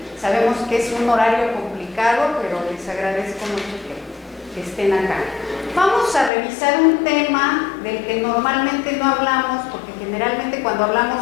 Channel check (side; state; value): right; drops out; at 6.3 s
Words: Sabemos que es un horario complicado, pero les agradezco mucho que estén acá. Vamos a revisar un tema del que normalmente no hablamos, porque generalmente cuando